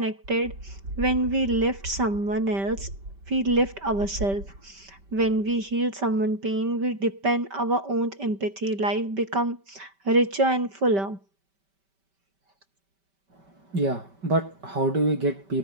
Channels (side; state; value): left; late; 5.1 ms